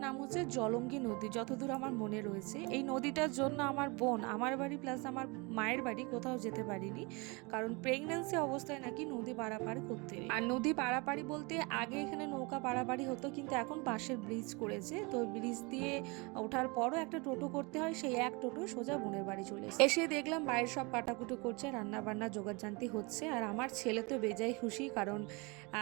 নাম হচ্ছে জলঙ্গি নদী, যতদূর আমার মনে রয়েছে। এই নদীটার জন্য আমার বোন আমার বাড়ি প্লাস আমার মায়ের বাড়ি কোথাও যেতে পারিনি, কারণ প্রেগন্যান্সি অবস্থায় নাকি নদী পারাপারি করতে নেই। আর নদী পারাপারি বলতে আগে এখানে নৌকা পারাপারি হতো, কিন্তু এখন বাঁশের ব্রিজ করেছে, তো ব্রিজ দিয়ে ওঠার পরও একটা টোটো করতে হয়, সেই এক টোটো সোজা বোনের বাড়ি চলে এসে দেখলাম বাইরের সব কাটাকুটো করছে, রান্না বান্না জোগাড়জান্তি হচ্ছে। আর আমার ছেলে তো বেজায় খুশি, কারণ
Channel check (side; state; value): left; quieter; 28.2 dB